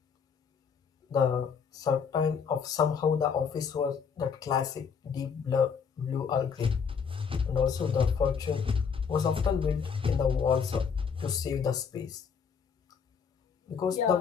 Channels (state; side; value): quieter; right; 6.4 dB